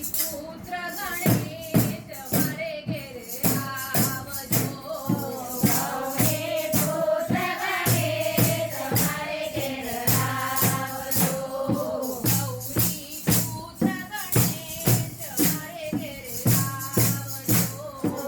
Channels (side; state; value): both; identical; correlation 1.00